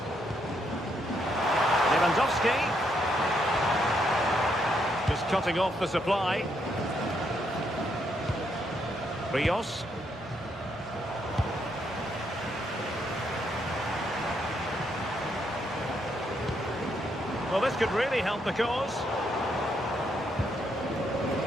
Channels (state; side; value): normal; both; correlation 0.76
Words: Lewandowski. Just cutting off the supply. Rios. Well, this could really help the cause.